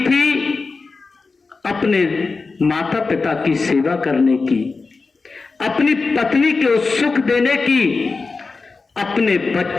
थी अपने माता पिता की सेवा करने की, अपनी पत्नी को सुख देने की, अपने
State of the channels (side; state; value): right; quieter; 4.2 dB